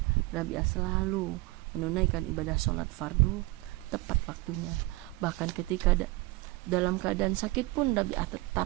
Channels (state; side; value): quieter; left; 21.7 dB